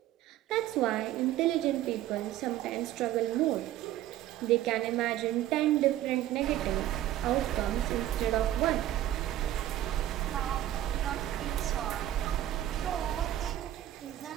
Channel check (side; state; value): left; quieter; 13.3 dB